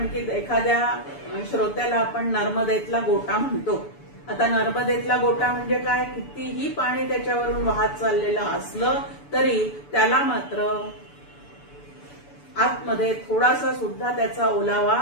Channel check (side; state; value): right; late; 6.9 ms